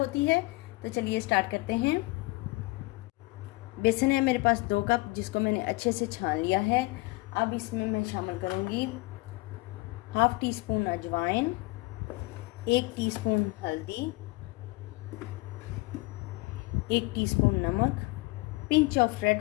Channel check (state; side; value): quieter; right; 23.0 dB